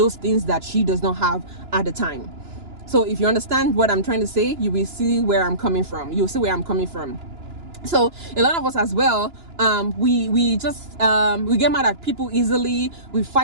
things that she does not have at the time. So if you understand what I'm trying to say, you will see where I'm coming from. You'll see where I'm coming from. So a lot of us as well, we get mad at people easily. We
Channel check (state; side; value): late; left; 2.9 ms